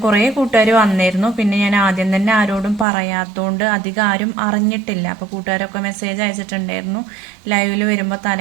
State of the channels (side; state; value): left; drops out; at 2.9 s